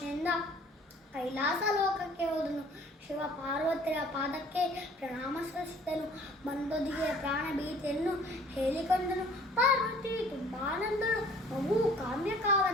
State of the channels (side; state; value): both; normal; correlation 0.53